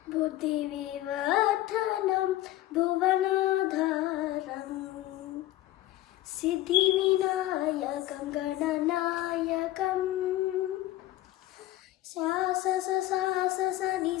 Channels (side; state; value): right; quieter; 15.4 dB